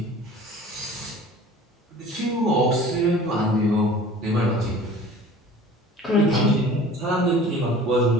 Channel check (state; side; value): normal; both; correlation 0.45